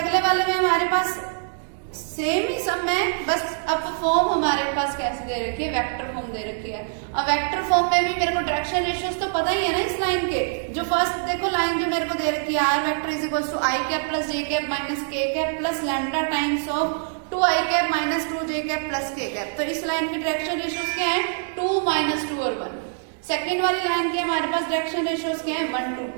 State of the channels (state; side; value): silent; left; digital silence